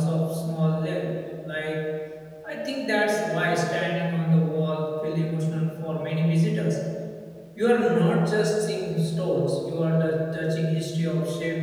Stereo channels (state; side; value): identical; both; correlation 1.00